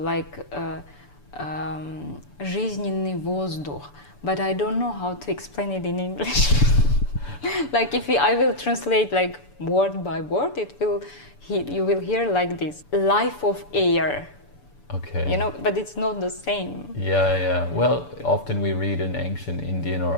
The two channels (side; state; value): right; late; 6.9 ms